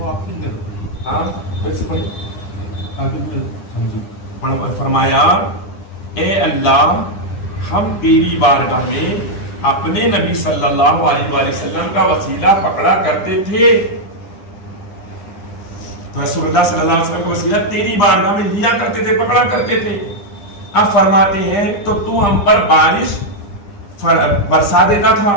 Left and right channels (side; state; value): right; late; 9.9 ms